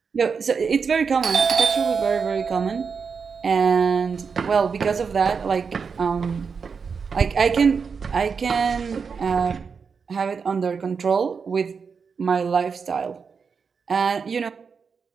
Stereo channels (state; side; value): quieter; left; 5.7 dB